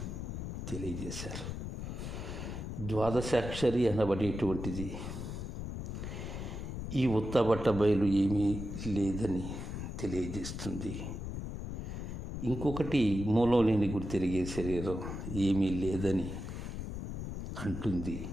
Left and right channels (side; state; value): left; noise; rumble, 6 dB below the sound